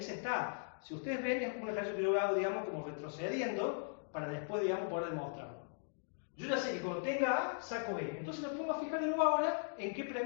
está A. Si ustedes ven, es un ejercicio que yo hago, digamos, como retrocediendo, para después, digamos, poder demostrarlo. Yo ya sé que cuando tenga A, saco B. Entonces me pongo a fijar de nuevo ahora en qué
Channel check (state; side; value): silent; right; digital silence